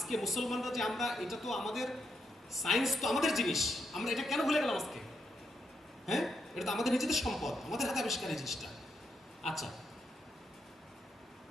মুসলমানরা যে আমরা, এটা তো আমাদের সায়েন্স, তো আমাদের জিনিস, আমরা এটা কেন ভুলে গেলাম আজকে? হ্যাঁ, এটা তো আমাদের নিজেদের সম্পদ, আমাদের হাতে আবিষ্কার এই জিনিসটা। আচ্ছা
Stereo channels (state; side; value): normal; both; correlation 0.80